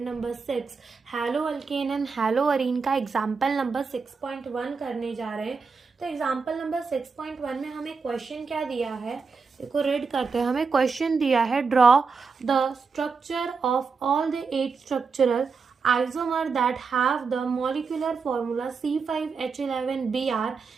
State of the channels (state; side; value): quieter; left; 5.0 dB